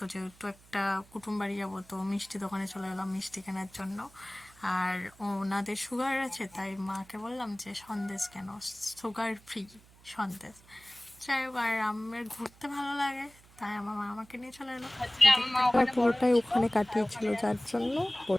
যেহেতু একটা কুটুম বাড়ি যাবো তো মিষ্টি দোকানে চলে গেলাম মিষ্টি কেনার জন্য। আর ওনাদের সুগার আছে তাই মাকে বললাম যে সন্দেশ কেন, সুগার ফ্রি সন্দেশ। যাই হোক, আর আমার ঘুরতে ভালো লাগে তাই আমার মা আমাকে নিয়ে চলে এলো। পুরোটাই ওখানে কাটিয়েছিল যার জন্য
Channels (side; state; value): right; noise; hum, 25 dB below the sound